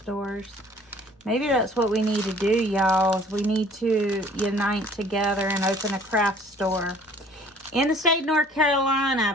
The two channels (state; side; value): normal; both; correlation 0.53